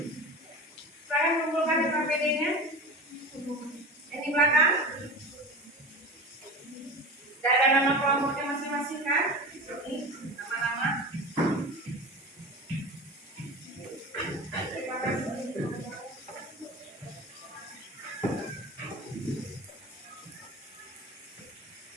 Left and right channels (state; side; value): normal; both; correlation 0.31